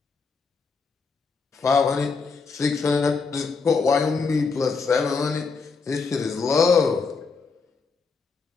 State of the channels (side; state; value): right; quieter; 4.8 dB